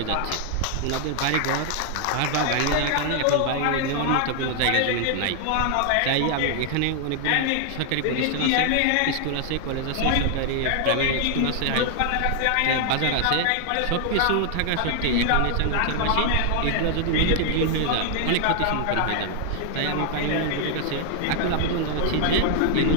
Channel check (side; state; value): both; different; correlation 0.00